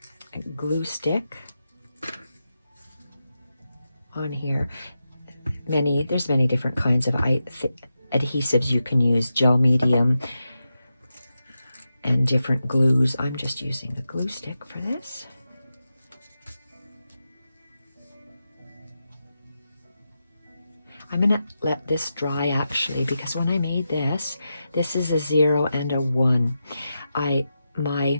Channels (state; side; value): inverted; both; correlation -0.89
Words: glue stick on here. There's many different kinds of adhesives you can use, gel medium, and different glues. I'm just using the glue stick for this. I'm gonna let this dry actually, because when I made this is a 0 and a 1. my